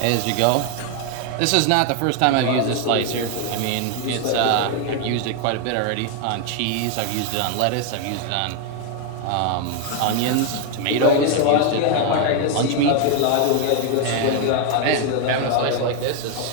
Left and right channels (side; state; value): both; different; correlation 0.01